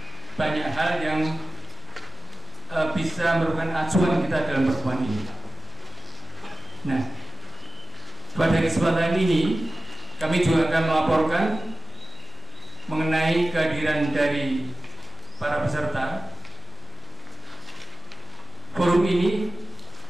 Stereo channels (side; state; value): both; normal; correlation 0.96